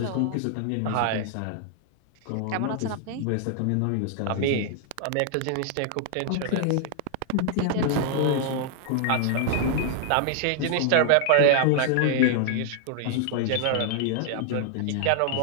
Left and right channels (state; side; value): different; both; correlation 0.00